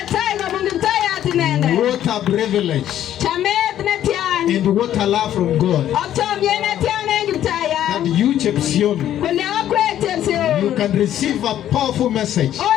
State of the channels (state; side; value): quieter; right; 11.5 dB